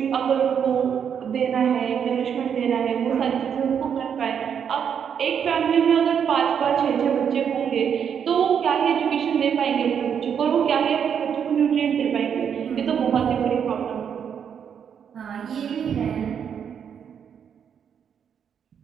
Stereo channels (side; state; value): left; quieter; 7.8 dB